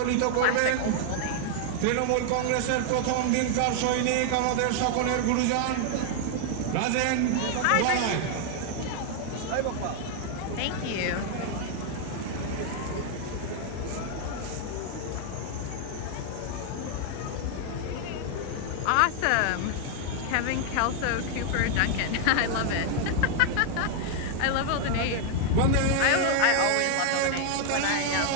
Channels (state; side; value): different; both; correlation 0.00